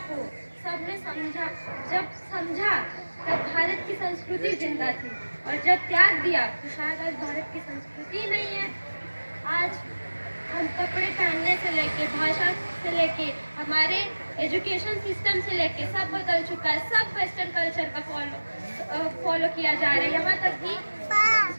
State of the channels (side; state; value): both; inverted; correlation -1.00